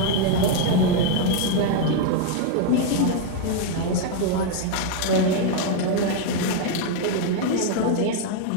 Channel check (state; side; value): different; both; correlation 0.00